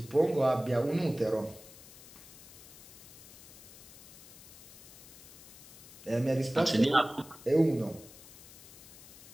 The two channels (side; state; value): left; noise; hiss, 18 dB below the sound